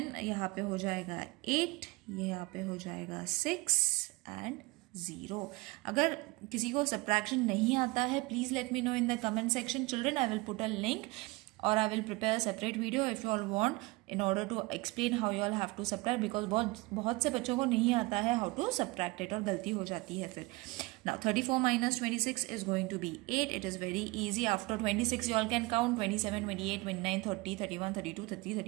यहाँ पे हो जाएगा 8, ये यहाँ पे हो जाएगा 6 एंड 0। अगर किसी को सब्ट्रैक्शन नहीं आता है please let me know in the comment section children. I will put a link or I will prepare a separate video if you all want in order to explain how you all have to subtract because बहुत से बच्चों को नहीं आता है how to subtract it और गलती हो जाती है फिर। Now 34 minus 26 is going to be 8. It is very easy. After 26 you all can count 27, 28, 29, 30, 31, 32, 33,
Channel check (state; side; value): quieter; left; 23.8 dB